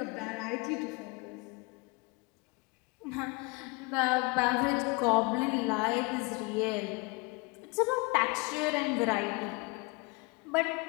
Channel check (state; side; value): quieter; right; 27.6 dB